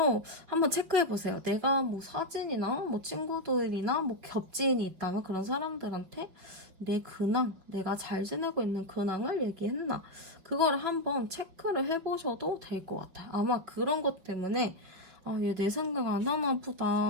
한번 체크해보세요. 내가 뭐 사진이나 뭐 친구들이나 뭐 겹지인이 있다면 그런 사람들한테 내 근황, 내가 잘 지내고 있는 근황을 얘기했나 그걸 한번 체크를 해보셔도 될 것 같아요. 아마 그런 것 때문에 얘 내 생각 안 하나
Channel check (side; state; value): left; late; 5.5 ms